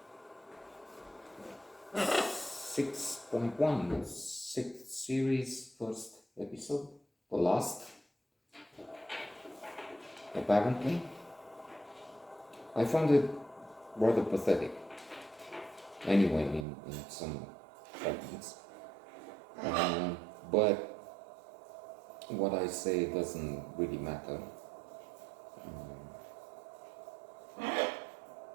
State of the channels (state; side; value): drops out; left; at 16.7 s